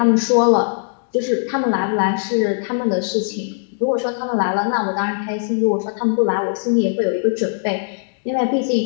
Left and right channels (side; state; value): right; silent; digital silence